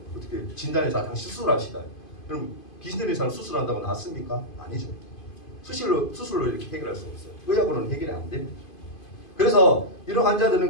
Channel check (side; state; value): right; late; 2.5 ms